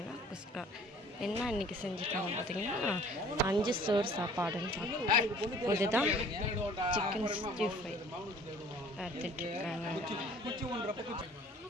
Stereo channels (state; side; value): normal; both; correlation 0.52